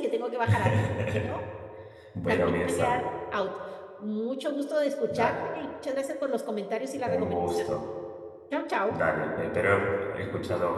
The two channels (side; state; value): both; identical; correlation 1.00